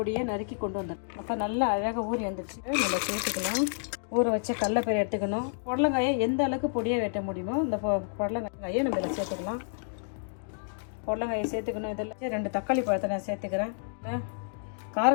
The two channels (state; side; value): silent; right; digital silence